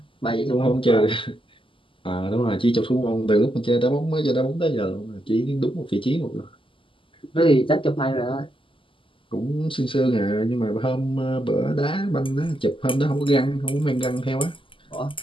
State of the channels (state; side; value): late; right; 0.25 ms